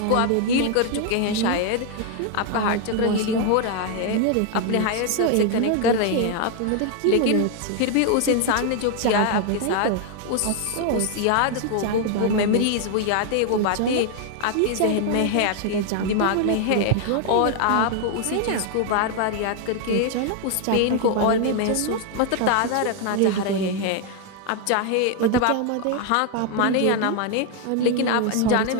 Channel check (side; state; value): both; different; correlation 0.00